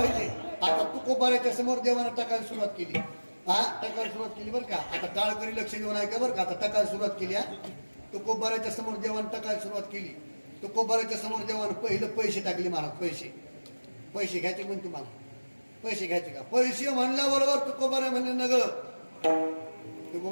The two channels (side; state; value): both; inverted; correlation -1.00